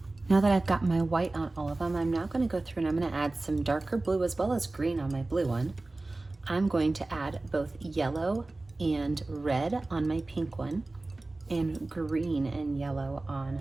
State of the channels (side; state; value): left; quieter; 3.0 dB